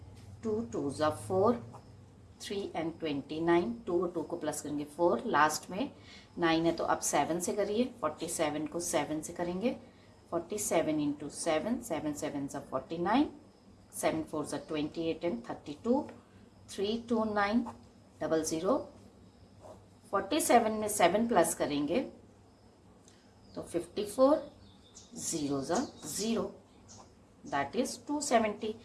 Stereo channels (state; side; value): identical; both; correlation 1.00